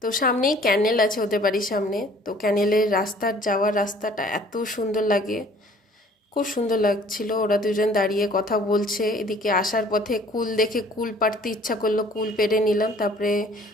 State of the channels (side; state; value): both; normal; correlation 0.54